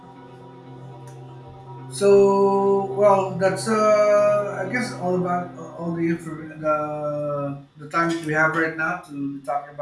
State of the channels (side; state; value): both; identical; correlation 1.00